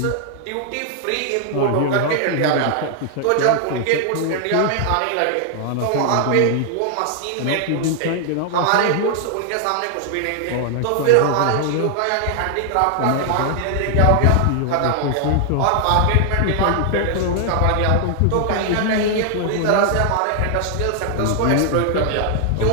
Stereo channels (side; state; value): both; different; correlation 0.00